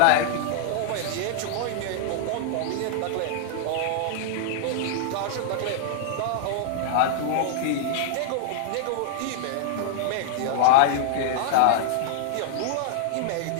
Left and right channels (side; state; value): both; different; correlation -0.01